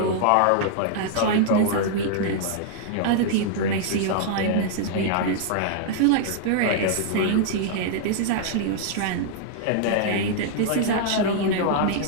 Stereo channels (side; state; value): both; different; correlation -0.01